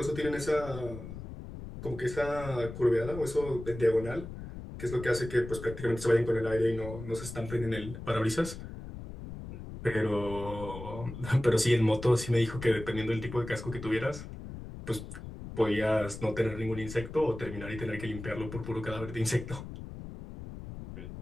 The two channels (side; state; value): left; noise; rumble, 11 dB below the sound